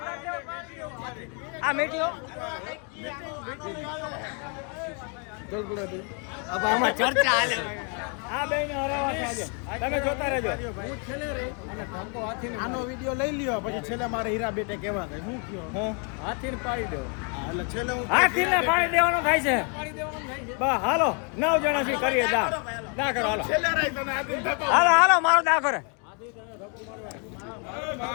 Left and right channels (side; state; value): right; quieter; 38.2 dB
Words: આ મેટીઓ अब આમાં ચર્ચા હાલે. આ બેને હરાવા છે આજે. તમે જોતા રહેજો. હું છેલ્લે રહી અને ધક્કો હાથીને આનો વિડિયો લઈ લ્યો પછી છેલ્લે મારે હીરા બેટે કહેવા થાય હું કયો હાથીને પાડી દેવો. એટલે છેલ્લે હું હાથીને પાડી દેવાનો થાય છે. બસ હાલો 9 જણા થી કરીએ દા કરો હાલો. છેલ્લે રહી તને હાથીને ધક્કો હાલો મારો દા કરે